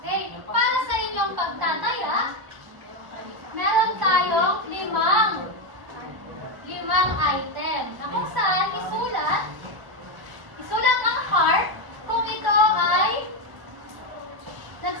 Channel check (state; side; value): late; left; 1.0 ms